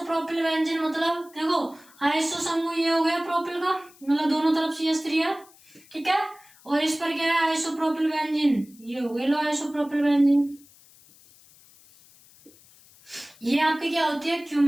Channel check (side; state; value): left; noise; hiss, 26 dB below the sound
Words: बेंजीन मतलब देखो आइसो समूह ये हो गया प्रोपिल का, मतलब दोनों तरफ CH3 है, ठीक है। और इस पर क्या है आइसोप्रोपिल बेंजीन, ये हो गई लो आइसोप्रोपिल बेंजीन। ये आपकी क्या होती है